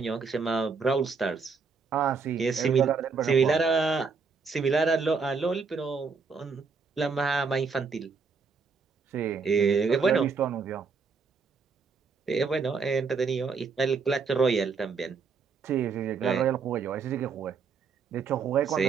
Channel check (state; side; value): quieter; left; 5.1 dB